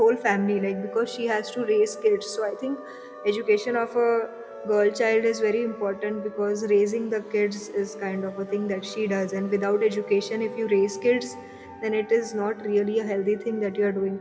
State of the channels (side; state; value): both; identical; correlation 1.00